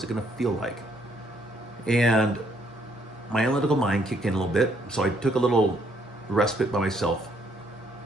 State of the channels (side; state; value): both; normal; correlation 0.70